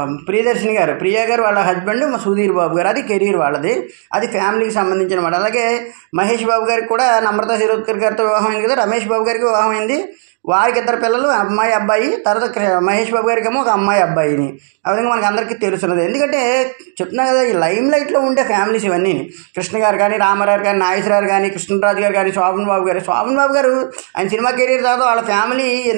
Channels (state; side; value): silent; left; 70 dB below the other